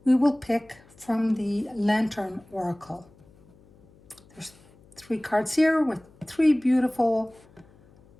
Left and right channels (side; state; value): left; noise; hum, 27 dB below the sound